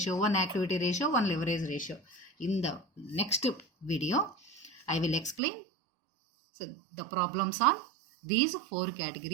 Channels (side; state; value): left; drops out; at 5.4 s